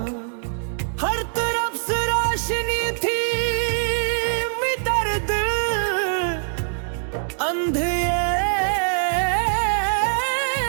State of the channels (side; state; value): left; silent; digital silence